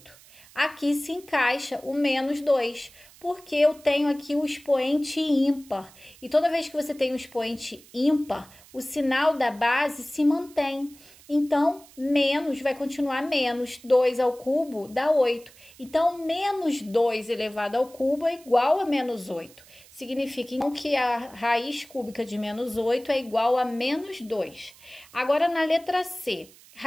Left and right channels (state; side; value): noise; right; hiss, 24 dB below the sound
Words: Aqui se encaixa o menos 2, porque eu tenho aqui o expoente ímpar. E toda vez que você tem um expoente ímpar, o sinal da base se mantém. Então, menos vai continuar menos. 2 ao cubo dá 8. Então, menos 2 elevado ao cubo é igual a menos 8. Significa então que a raiz cúbica de menos 8 é igual a menos 2. Agora, na letra C,